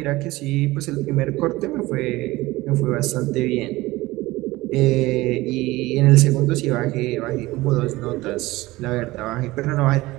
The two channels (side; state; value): left; quieter; 19.4 dB